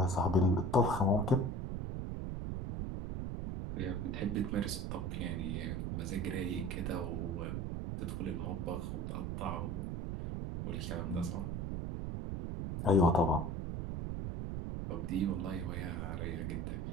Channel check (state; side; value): noise; right; rumble, 3 dB below the sound